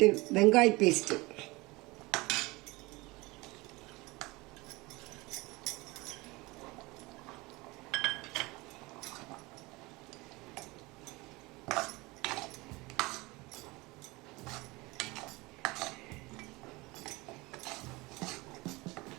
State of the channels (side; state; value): left; quieter; 23.0 dB